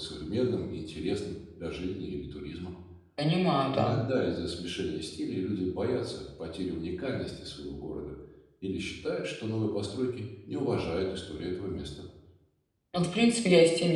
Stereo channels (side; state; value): both; identical; correlation 1.00